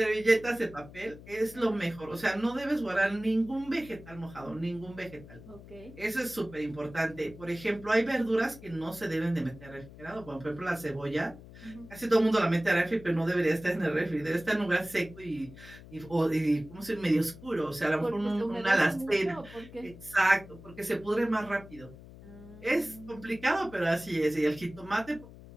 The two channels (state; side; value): noise; left; hum, 18 dB below the sound